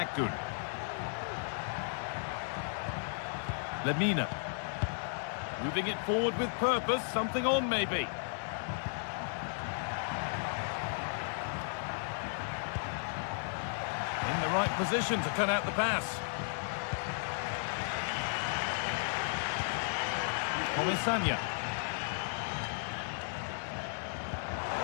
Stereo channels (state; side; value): silent; right; 55 dB below the other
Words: Lemina. Moving it forward with purpose, something on maybe. In the right position to cut out the pass. Comisania.